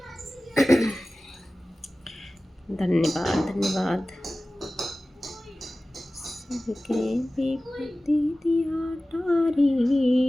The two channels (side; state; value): both; normal; correlation 0.96